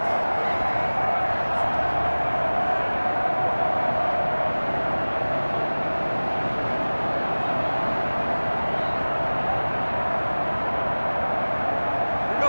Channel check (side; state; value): both; inverted; correlation -1.00